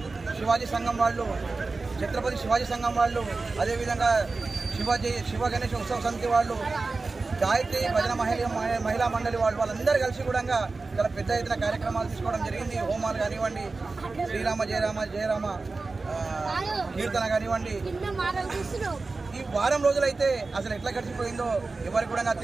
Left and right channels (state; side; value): quieter; left; 3.8 dB